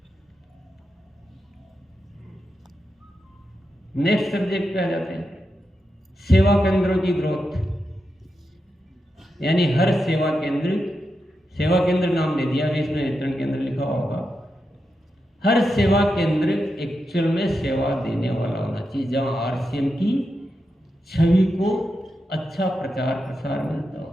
नेक्स्ट सब्जेक्ट पे आ जाते हैं, सेवा केंद्रों की ग्रोथ। यानी हर सेवा केंद्र नाम दे दिया, इसमें वितरण केंद्र लिखा होगा। हर सेवा केंद्र एक्चुअल में सेवा देने वाला होना चाहिए, जहां आरसीएम की छवि को अच्छा प्रचार प्रसार मिलता हो,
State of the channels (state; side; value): normal; both; correlation 0.87